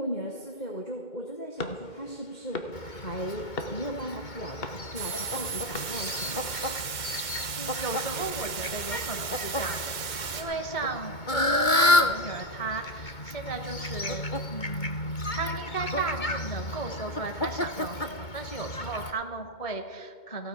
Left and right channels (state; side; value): late; right; 2.2 ms